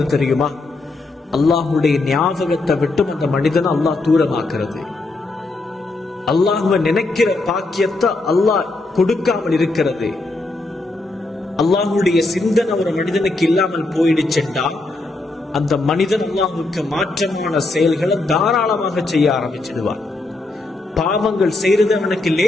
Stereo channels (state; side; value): quieter; right; 3.1 dB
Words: தெரியுமா? அல்லாஹுடைய ஞாபகத்தை விட்டும் அந்த மனிதனை அல்லாஹ் தூரமாக்குறது. அல்லாஹுவை நினைக்கிற பாக்கியத்தை அல்லாஹ் கொடுக்காமல் இருக்கிறது. அல்லாஹுடைய சிந்தனை ஒரு மனிதனுக்கு இல்லாமல் போயிடுச்சுட்டா அந்த மனிதன் அல்லாஹுக்கு மாற்றமான செயல்களை தாராளமாக செய்ய ஆரம்பிச்சிடுவான். பாவங்கள் செய்யறது அவனுக்கு